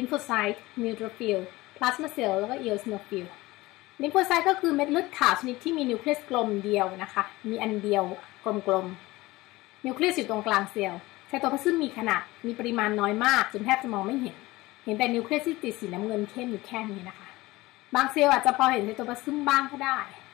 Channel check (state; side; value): quieter; right; 19.7 dB